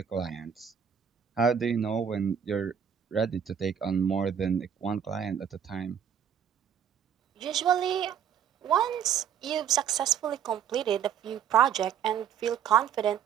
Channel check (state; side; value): quieter; left; 8.4 dB